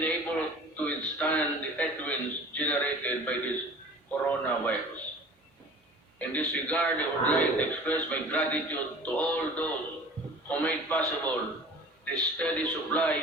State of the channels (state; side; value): normal; both; correlation 0.43